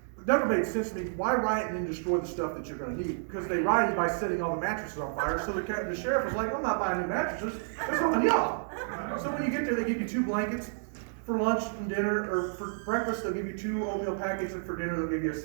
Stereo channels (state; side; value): silent; left; digital silence